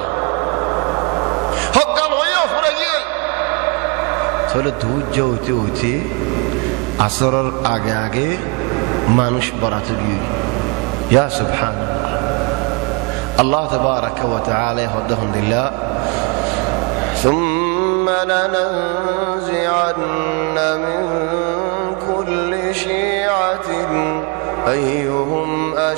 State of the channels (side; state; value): left; quieter; 30.2 dB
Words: হকাল হইও পুরো গিয়ে চলে ধৈর্য হইতে হইতে আসরের আগে আগে মানুষ বরাতে গিয়ে ইয়া সুবহানাল্লাহ আল্লাহ তাবারাক ওয়া তাআলা ইয়াহদাহুম বিল্লাহ ثم لننزعن من كل شيعة أيهم